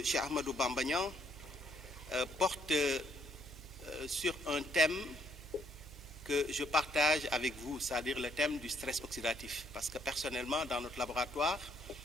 Cheikh Ahmadou Bamba Niang porte sur un thème que je partage avec vous, c'est-à-dire le thème du stress oxydatif. Parce que personnellement, dans notre laboratoire,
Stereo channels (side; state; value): right; noise; hum, 17 dB below the sound